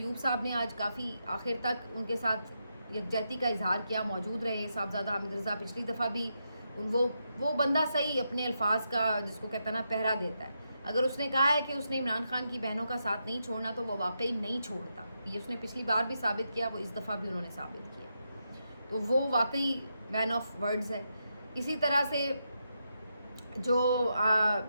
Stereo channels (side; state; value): both; inverted; correlation -0.84